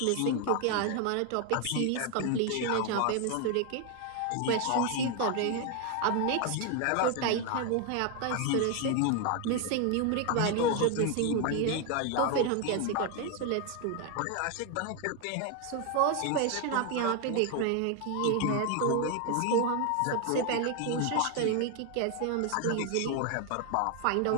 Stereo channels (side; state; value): both; different; correlation 0.01